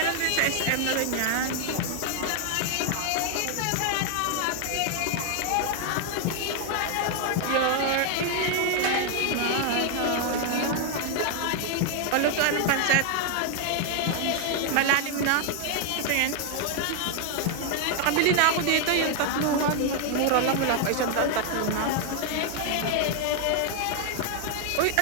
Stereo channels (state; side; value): different; both; correlation 0.00